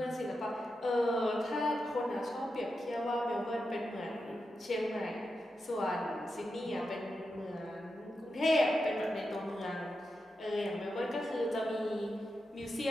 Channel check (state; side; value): normal; both; correlation 0.88